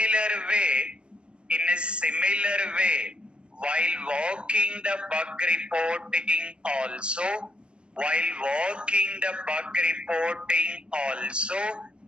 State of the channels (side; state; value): left; late; 0.056 ms